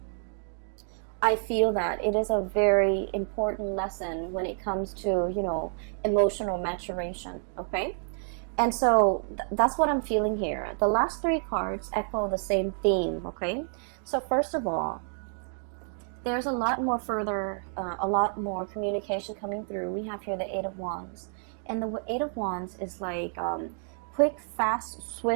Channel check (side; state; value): left; silent; 58 dB below the other